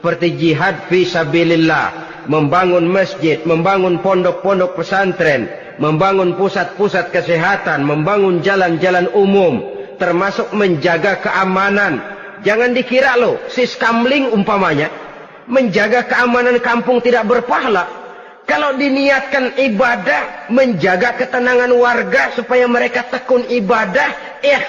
jihad fi sabilillah, membangun masjid, membangun pondok-pondok pesantren, membangun pusat-pusat kesehatan, membangun jalan-jalan umum, termasuk menjaga keamanan. Jangan dikira loh, siskamling umpamanya, menjaga keamanan kampung tidak berpahala. Kalau diniatkan ibadah, menjaga ketenangan warga supaya mereka tekun ibadah,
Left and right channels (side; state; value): both; identical; correlation 1.00